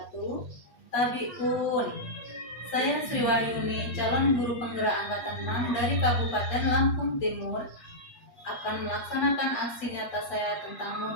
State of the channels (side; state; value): right; late; 8.3 ms